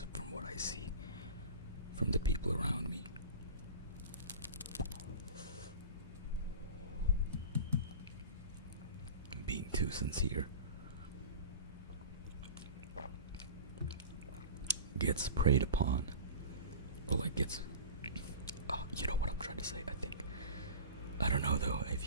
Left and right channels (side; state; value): both; inverted; correlation -0.34